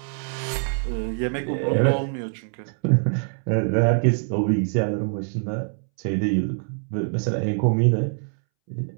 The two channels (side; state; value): left; silent; 62 dB below the other